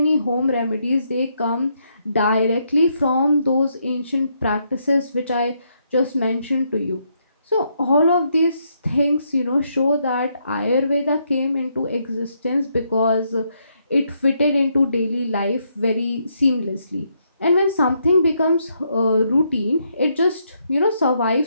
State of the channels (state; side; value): inverted; both; correlation -0.76